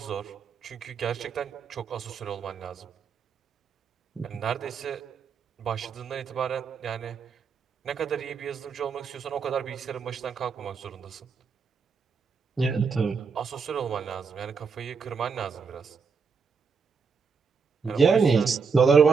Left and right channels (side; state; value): left; quieter; 5.4 dB